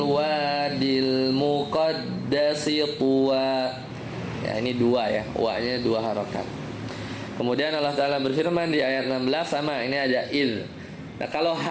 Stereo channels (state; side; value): identical; both; correlation 1.00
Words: wadil muqaddasi tuwa ya. Ini dua ya, wa-nya dua harakat. Kemudian Allah Ta'ala berfirman di ayat 16 sama, ini ada id. Nah kalau